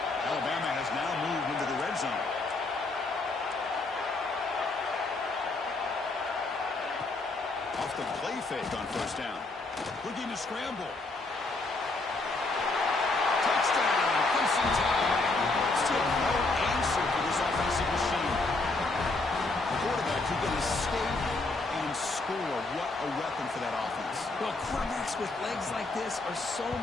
Alabama has now moved into the red zone. Off the play fake on 1st down. Looking to scramble. Touchdown. Crimson Tide. Still no answer for this offensive machine. The quarterback who's going to skate and score. What a weapon for that offense. Well, quarterbacks with legs like this are so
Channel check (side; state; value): right; quieter; 3.3 dB